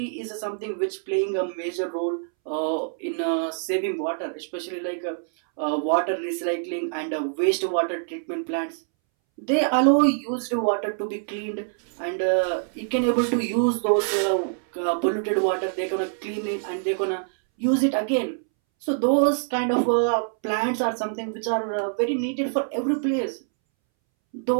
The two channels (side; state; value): left; silent; 62 dB below the other